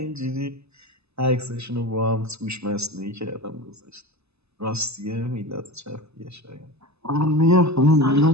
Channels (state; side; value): late; left; 0.79 ms